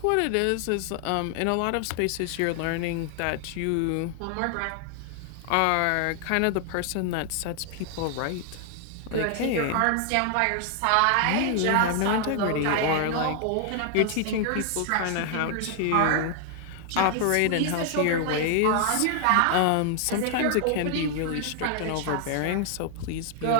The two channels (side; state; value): both; different; correlation 0.00